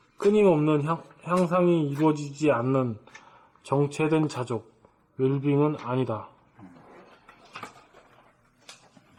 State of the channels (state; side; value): identical; both; correlation 1.00